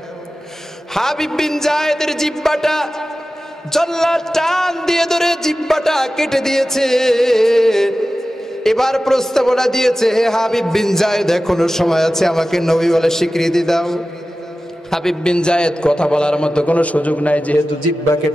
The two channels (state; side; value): normal; both; correlation 0.95